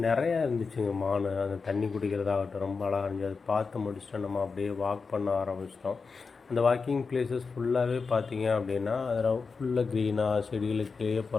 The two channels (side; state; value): right; quieter; 4.8 dB